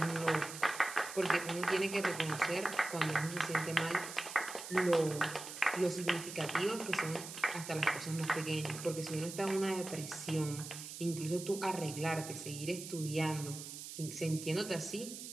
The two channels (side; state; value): right; noise; hiss, 10 dB below the sound